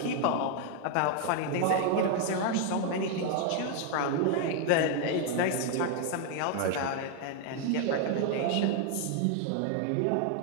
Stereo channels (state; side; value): different; both; correlation 0.00